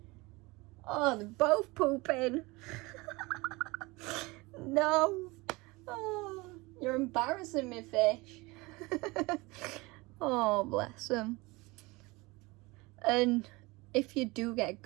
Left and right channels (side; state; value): left; quieter; 23.6 dB